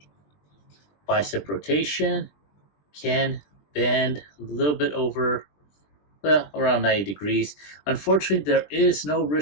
bicep rotation, can bend a little bit over, around 90 degrees. Unfortunately, there is no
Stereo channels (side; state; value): right; late; 20 ms